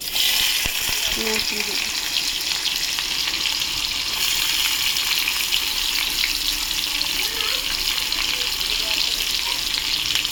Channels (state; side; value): identical; both; correlation 1.00